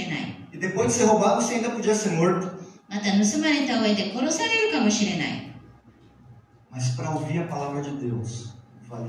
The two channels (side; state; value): both; identical; correlation 1.00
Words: ない。 E depois de ser roubado, você ainda podia ser morto. また盗まれた上で殺されるかもしれない。 Mas para ouvir a palavra de Deus,